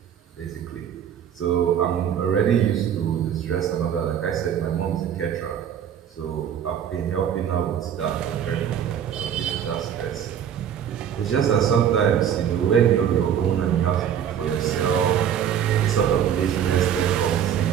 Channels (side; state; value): left; quieter; 9.1 dB